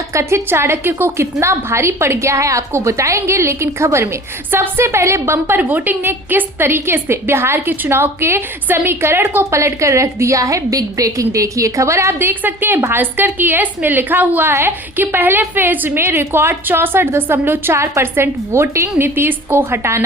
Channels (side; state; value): both; normal; correlation 0.42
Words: कथित चाणक्य को कितना भारी पड़ गया है आपको बताएंगे, लेकिन खबर में सबसे पहले बम्पर वोटिंग ने किस तरीके से बिहार के चुनाव के समीकरण को पलट कर रख दिया है। बिग ब्रेकिंग देखिए, खबर आप देख सकते हैं भास्कर की है। इसमें लिखा हुआ है कि पहले फेज में रिकॉर्ड 64.4% वोटिंग, नीतीश को